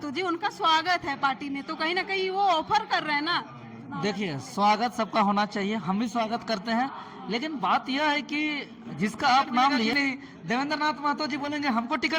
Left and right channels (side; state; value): both; identical; correlation 1.00